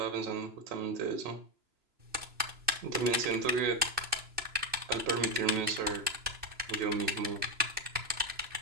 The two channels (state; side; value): late; left; 2.6 ms